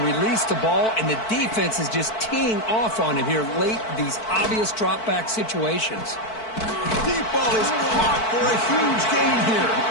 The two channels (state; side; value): late; right; 4.5 ms